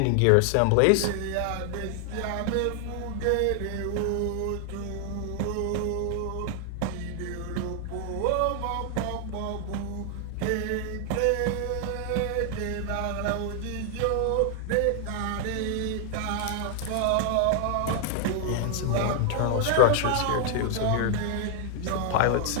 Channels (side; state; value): both; different; correlation 0.00